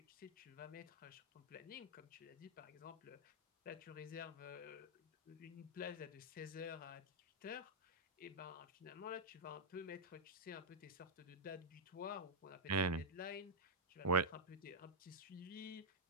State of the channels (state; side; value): normal; both; correlation -0.05